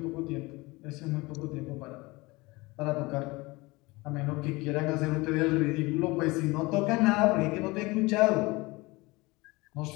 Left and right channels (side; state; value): right; quieter; 23.2 dB